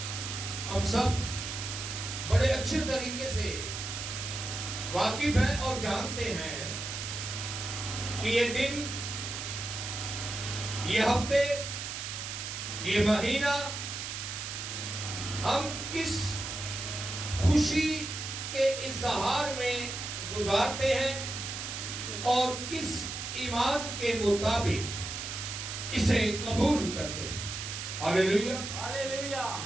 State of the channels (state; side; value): noise; right; hiss, 6 dB below the sound